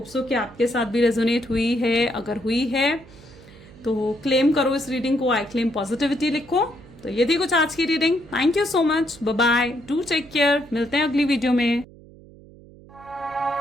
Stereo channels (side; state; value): right; noise; hum, 22 dB below the sound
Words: सो कि आपके साथ भी रेजोनेट हुई है। अगर हुई है तो क्लेम करो इस रीडिंग को, आई क्लेम पॉजिटिविटी लिखो। तो ये थी कुछ आज की reading. Thank you so much, bye bye, do take care. मिलते हैं अगली वीडियो में।